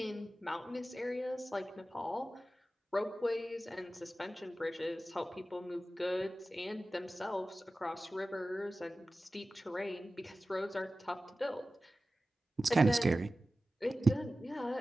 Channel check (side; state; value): both; normal; correlation 0.95